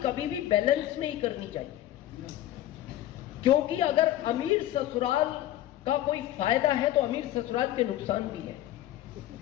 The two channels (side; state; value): right; quieter; 13.5 dB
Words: कभी भी बैलेंस में ही करनी चाहिए, क्योंकि अगर अमीर ससुराल का कोई फायदा है तो अमीर ससुराल के नुकसान भी है।